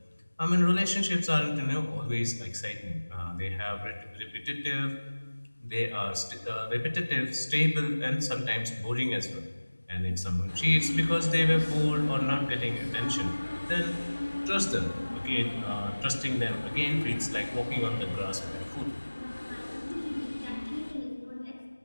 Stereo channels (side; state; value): both; inverted; correlation -1.00